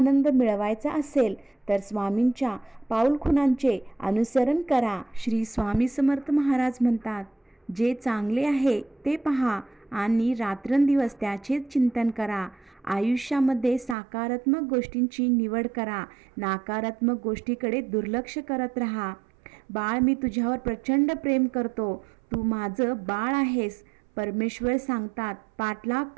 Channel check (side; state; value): left; drops out; at 14.0 s